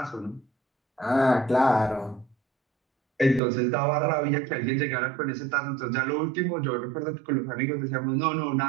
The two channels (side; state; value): left; drops out; at 3.4 s